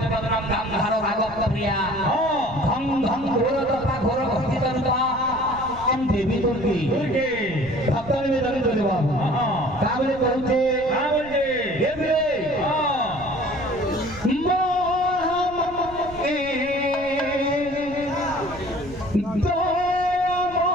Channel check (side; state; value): right; noise; rumble, 17 dB below the sound